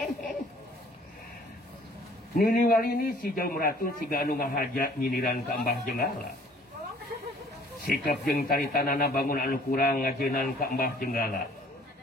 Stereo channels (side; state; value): both; normal; correlation 0.55